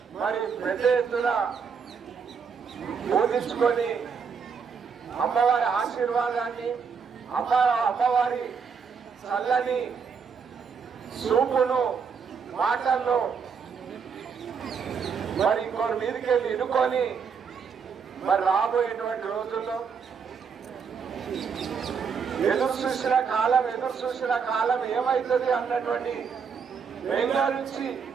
మరి పెద్ద ఎత్తున బోధించుకొని అమ్మవారి ఆశీర్వాదాన్ని అమ్మవారి చల్లని చూపును మాటల్లో మరి ఇంకోటి మీదకి వెళ్ళి ఇనుకొని మరి రాబోయేటువంటి రోజుల్లో ఎదురు చూసిన కాలం ఏమవుతుంది అన్నటువంటి బెంగళూరు నుంచి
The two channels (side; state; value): left; quieter; 6.2 dB